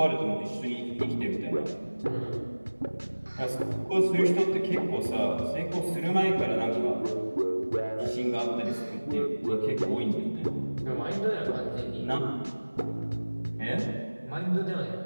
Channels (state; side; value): inverted; both; correlation -1.00